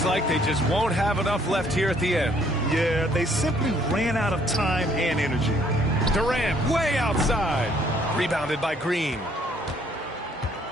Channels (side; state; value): both; normal; correlation 0.64